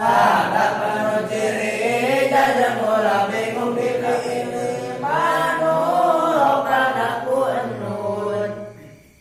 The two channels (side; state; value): both; identical; correlation 1.00